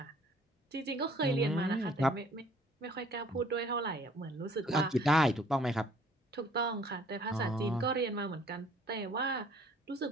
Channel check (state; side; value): normal; both; correlation 0.58